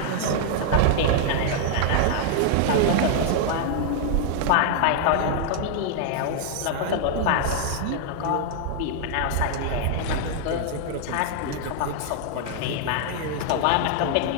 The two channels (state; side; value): different; both; correlation 0.00